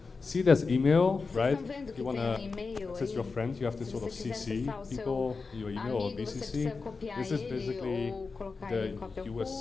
See, there's email, right? You want to access your friend, you have to sort of CC people, your email or BCC. This is basically the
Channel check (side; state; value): right; quieter; 4.4 dB